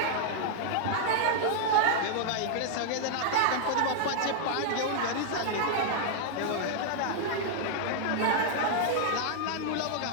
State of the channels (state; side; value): different; both; correlation 0.00